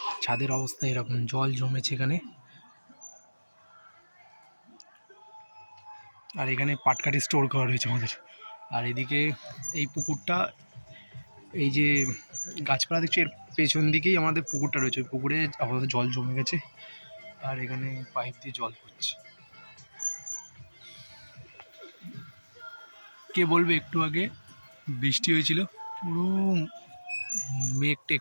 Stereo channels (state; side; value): inverted; both; correlation -1.00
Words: ছাদের অবস্থা এরকম, জল জমেছে এখানে। আর এখানে পাটকাঠি স্টোর করা রয়েছে আমাদের। আর এদিকে এই পুকুরটা, এই যে গাছপালা দেখছি এর পেছন দিকেই আমাদের পুকুরটা রয়েছে। ওই পুকুরে আপাতত জল জমে গেছে, আর এখানে পাইপ দিয়ে জল পড়ছে। কে বলবে একটু আগে বৃষ্টি হয়েছিল, পুরো মেঘ টেক